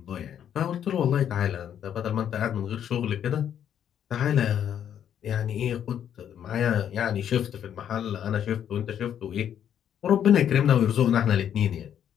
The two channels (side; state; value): right; quieter; 9.5 dB